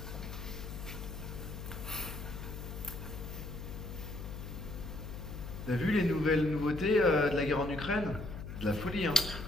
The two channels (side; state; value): left; noise; hum, 8 dB below the sound